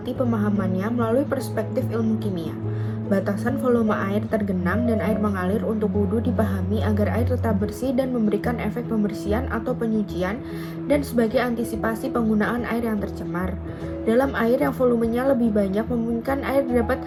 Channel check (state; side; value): identical; both; correlation 1.00